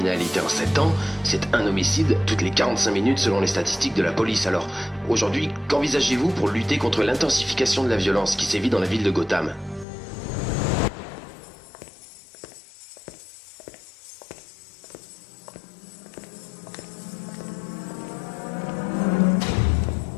en 7 ans, c'est un homicide toutes les 45 minutes selon les statistiques de la police. Alors, aujourd'hui, qu'envisagez-vous pour lutter contre l'intensification de la violence qui sévit dans la ville de Gotham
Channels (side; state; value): right; drops out; at 9.9 s